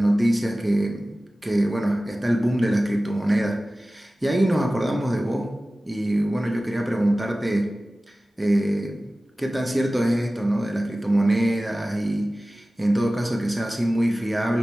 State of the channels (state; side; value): normal; both; correlation 0.97